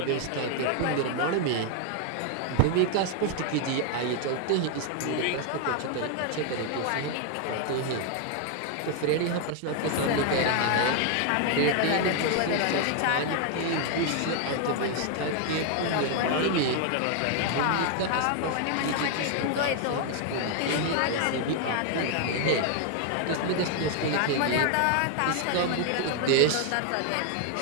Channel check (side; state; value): both; different; correlation 0.00